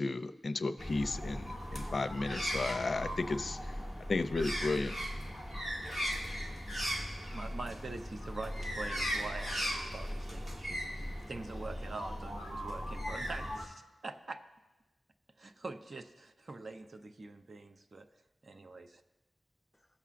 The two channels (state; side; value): normal; both; correlation 0.93